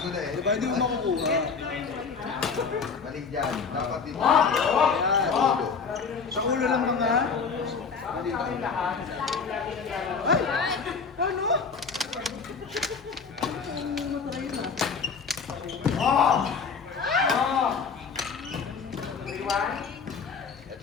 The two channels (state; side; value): quieter; right; 5.4 dB